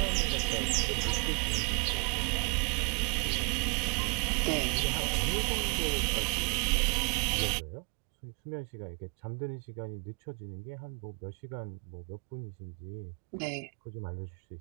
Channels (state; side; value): quieter; left; 32.0 dB